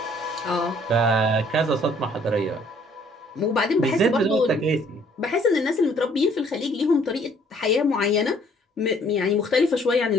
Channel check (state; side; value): normal; both; correlation 0.61